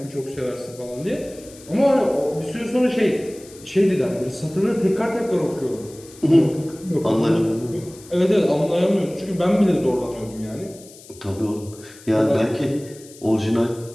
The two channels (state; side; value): noise; left; hiss, 21 dB below the sound